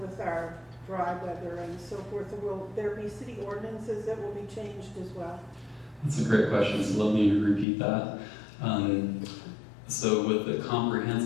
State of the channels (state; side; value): drops out; right; at 7.7 s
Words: with our dry weather and so forth? Will there be city ordinances that will be changed as well? That's a great question, so let me repeat that. So with the